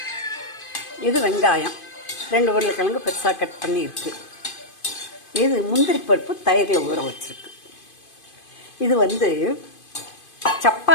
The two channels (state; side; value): late; right; 2.5 ms